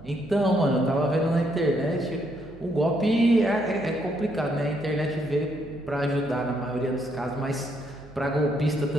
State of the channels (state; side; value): noise; right; hum, 20 dB below the sound